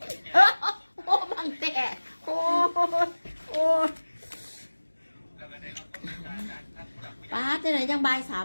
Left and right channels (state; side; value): inverted; both; correlation -1.00